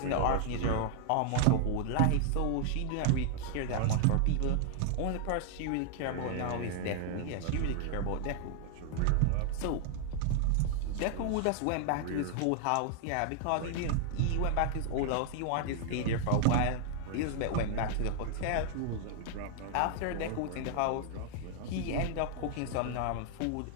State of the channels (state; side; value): different; both; correlation -0.01